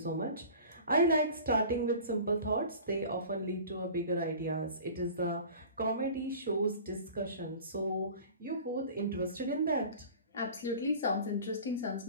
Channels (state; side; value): inverted; both; correlation -0.41